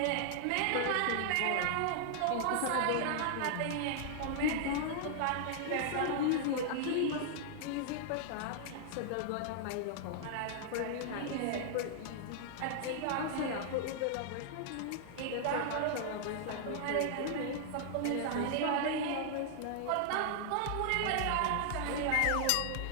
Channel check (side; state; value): both; different; correlation -0.01